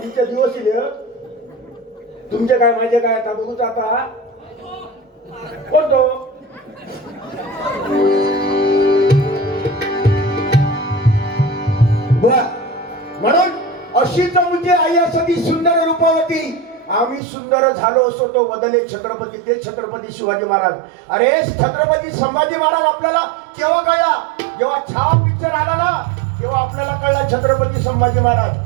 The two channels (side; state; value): left; drops out; at 17.2 s